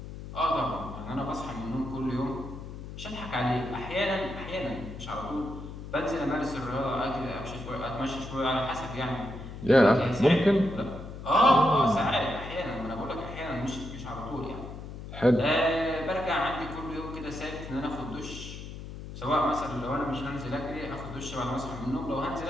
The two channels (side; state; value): left; noise; hum, 11 dB below the sound